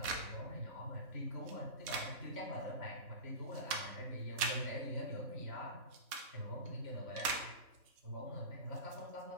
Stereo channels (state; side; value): late; left; 3.6 ms